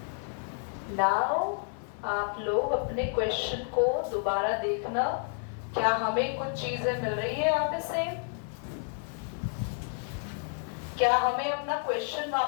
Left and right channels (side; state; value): right; silent; 58 dB below the other